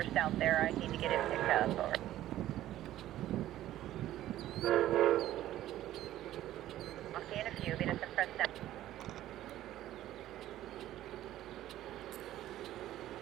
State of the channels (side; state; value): left; quieter; 13.6 dB